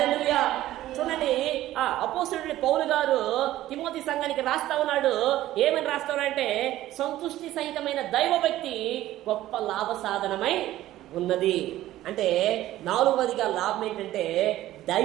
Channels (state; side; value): quieter; left; 14.6 dB